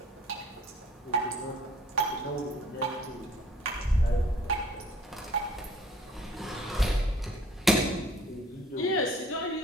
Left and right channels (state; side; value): normal; both; correlation 0.55